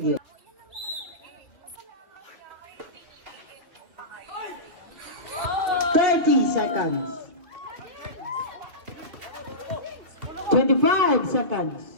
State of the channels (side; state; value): left; late; 3.3 ms